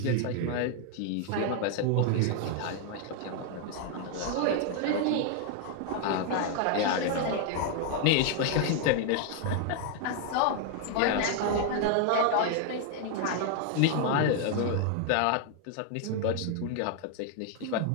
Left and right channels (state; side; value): different; both; correlation 0.00